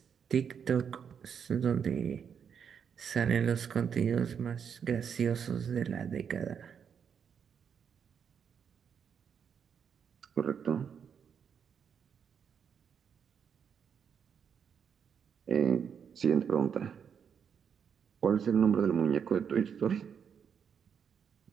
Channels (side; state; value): left; quieter; 7.3 dB